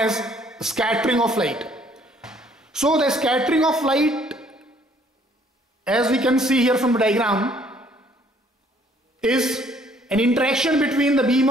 scattering of light. So the scattering of light, as we can see here from the diagram, is an interaction between the beam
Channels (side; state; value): both; normal; correlation 0.62